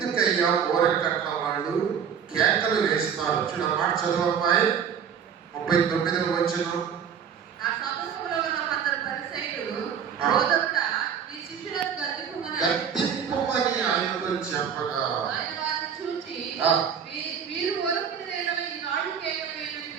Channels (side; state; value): left; quieter; 7.7 dB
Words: ఊరకట్ల వాళ్ళు కేకలు వేస్తారు? చూడ మాట చదవమ్మాయి 39వ వచనం. గద్దింపుమని ఆయనతో చెప్పగా